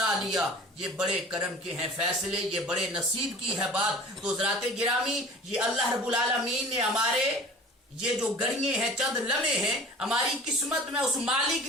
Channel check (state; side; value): normal; both; correlation 0.43